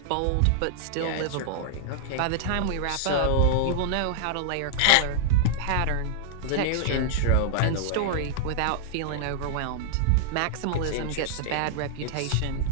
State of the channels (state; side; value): different; both; correlation -0.01